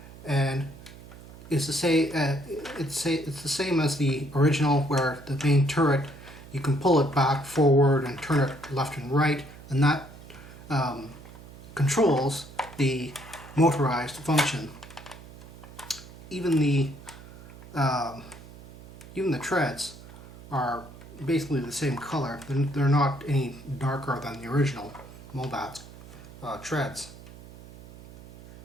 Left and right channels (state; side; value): noise; right; hum, 18 dB below the sound